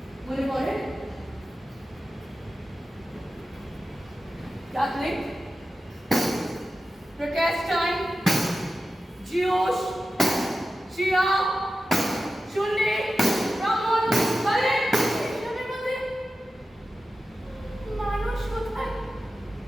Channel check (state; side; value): normal; both; correlation 0.93